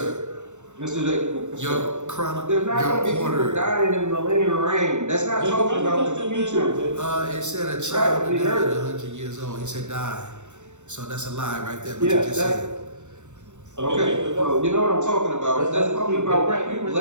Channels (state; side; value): late; left; 0.84 ms